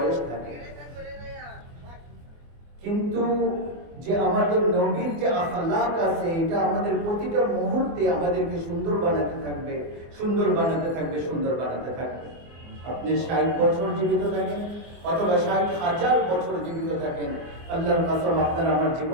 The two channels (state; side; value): late; left; 24 ms